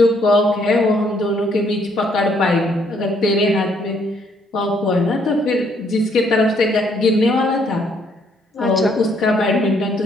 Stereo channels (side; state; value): both; normal; correlation 0.68